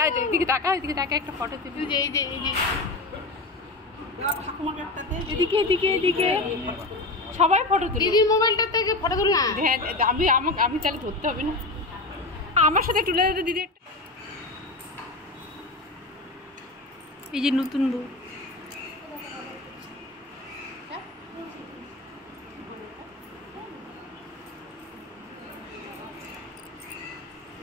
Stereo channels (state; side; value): quieter; right; 3.1 dB